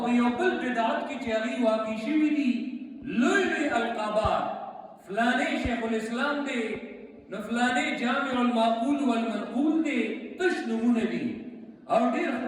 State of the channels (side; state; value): both; identical; correlation 1.00